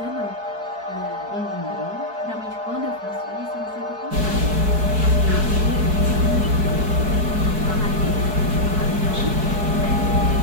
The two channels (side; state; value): left; late; 4.7 ms